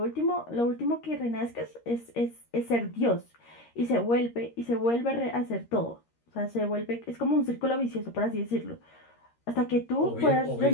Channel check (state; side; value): late; right; 13 ms